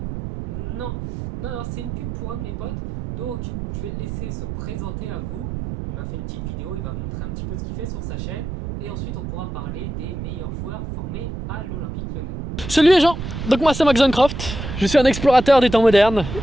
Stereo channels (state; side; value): noise; right; rumble, 6 dB below the sound